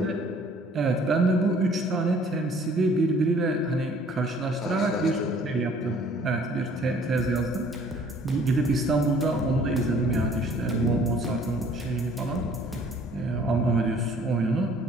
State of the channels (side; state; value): both; normal; correlation 0.56